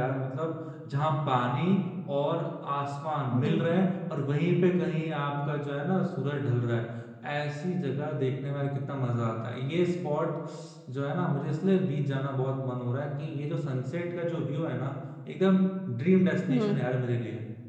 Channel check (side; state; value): both; identical; correlation 1.00